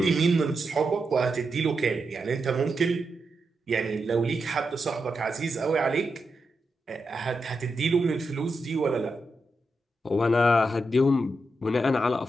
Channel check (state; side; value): normal; both; correlation 0.86